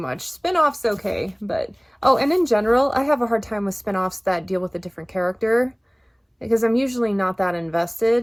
Spin-offs okay, but oh, and in general, I have a hard time with spin-offs that deal with a different character because I'm usually not that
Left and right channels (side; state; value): both; identical; correlation 1.00